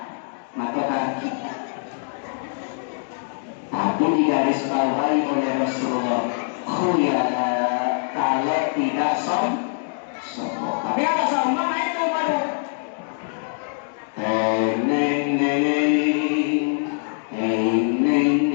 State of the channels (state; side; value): silent; right; digital silence